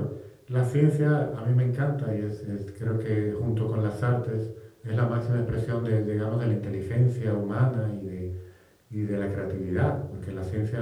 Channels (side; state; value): both; identical; correlation 1.00